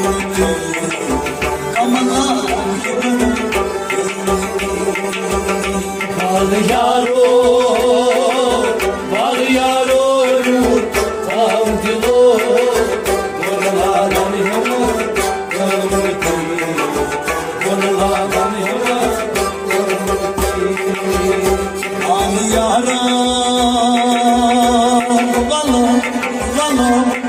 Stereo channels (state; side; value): identical; both; correlation 1.00